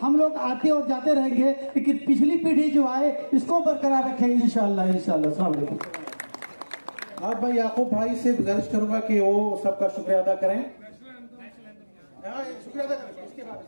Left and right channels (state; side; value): inverted; both; correlation -1.00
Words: हम लोग आते और जाते रहेंगे, लेकिन पिछली पीढ़ी जो आए इसको बरकरार रखें इंशाअल्लाह। अस्सलाम वालेकुम। आप भाई याकूब भाई से गुजारिश करूंगा कि वो सबका शुक्रिया अदा करें। शुक्रिया अदा करें। इसके बाद